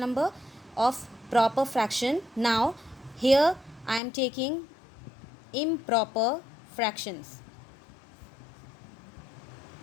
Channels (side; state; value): right; drops out; at 4.0 s